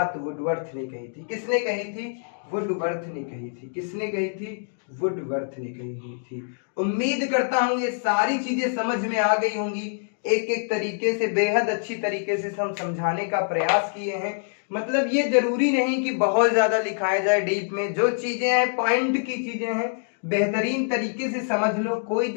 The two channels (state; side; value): silent; right; digital silence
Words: वुडवर्थ ने कही थी। किसने कही थी? वुडवर्थ ने कही थी। किसने कही थी? वुडवर्थ ने कही थी। उम्मीद करता हूं ये सारी चीजें समझ में आ गई होंगी। एक एक तरीके से बेहद अच्छी तरीके से हम समझाने का प्रयास किए हैं। मतलब ये जरूरी नहीं कि बहुत ज्यादा लिखाया जाए डीप में। जो चीजें हैं पॉइंट की चीजें हैं, बेहतरीन तरीके से समझ लो, कोई